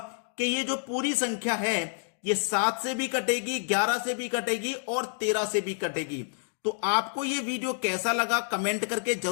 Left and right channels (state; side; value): silent; right; digital silence